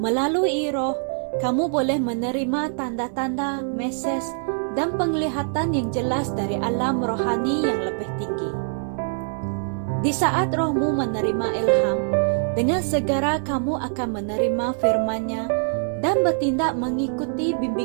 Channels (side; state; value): left; silent; digital silence